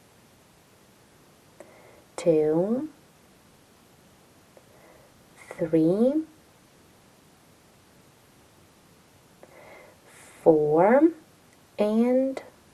2, 3, 4, and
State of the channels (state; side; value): identical; both; correlation 1.00